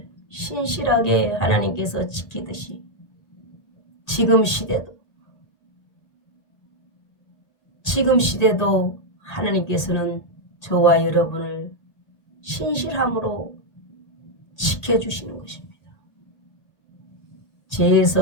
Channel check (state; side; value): late; right; 1.8 ms